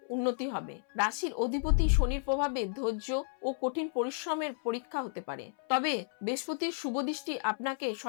উন্নতি হবে। রাশির অধিপতি শনির প্রভাবে ধৈর্য ও কঠিন পরিশ্রমের পরীক্ষা হতে পারে, তবে বৃহস্পতির শুভ দৃষ্টি আপনাকে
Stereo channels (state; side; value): silent; right; 56 dB below the other